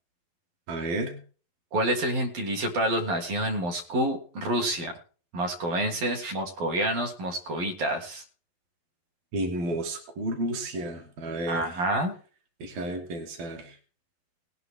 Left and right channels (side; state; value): left; late; 12 ms